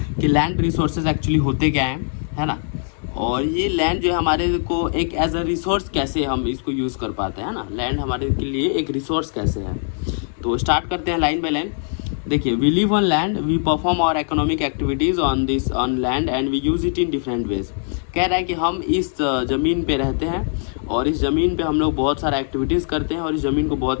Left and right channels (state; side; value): silent; right; 61 dB below the other